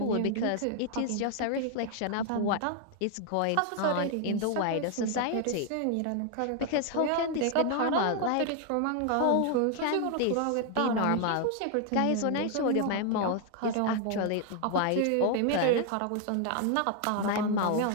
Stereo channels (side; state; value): both; different; correlation 0.00